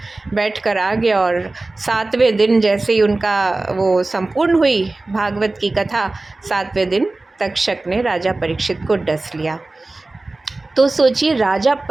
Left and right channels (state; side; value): quieter; left; 3.1 dB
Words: बैठ कर आ गया। और 7वें दिन जैसे ही उनका वो संपूर्ण हुई भागवत की कथा, 7वें दिन तक्षक ने राजा परीक्षित को डस लिया। तो सोचिए, राजा